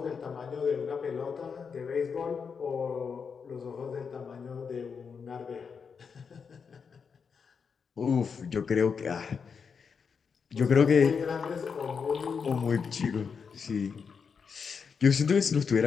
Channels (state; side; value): quieter; right; 6.0 dB